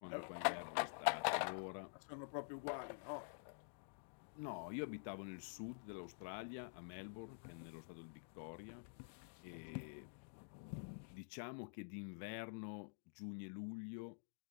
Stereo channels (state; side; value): silent; right; digital silence